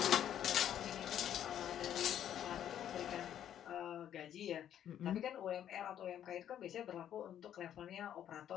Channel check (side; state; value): right; quieter; 10.4 dB